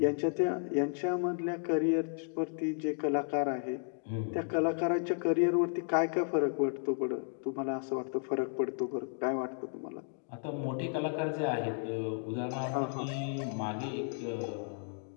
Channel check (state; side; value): silent; right; 55 dB below the other